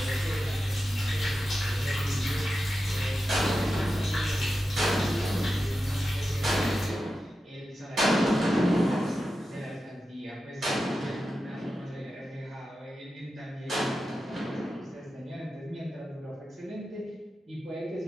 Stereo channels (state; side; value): normal; both; correlation 0.91